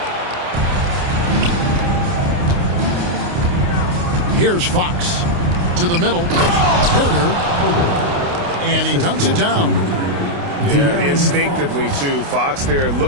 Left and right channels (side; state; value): left; late; 29 ms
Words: Here's Fox to the middle. Herter. And he dunks it down. Yeah, instinctively, too. Fox there